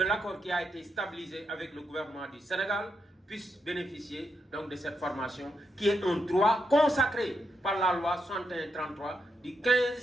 l'accord qui a été stabilisé avec le gouvernement du Sénégal puissent bénéficier donc de cette formation qui est un droit consacré par la loi 6133 du 15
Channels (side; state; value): both; normal; correlation 0.82